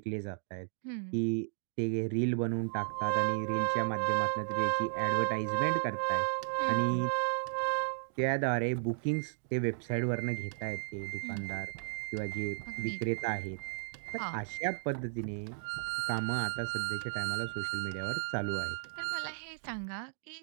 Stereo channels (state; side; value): silent; left; digital silence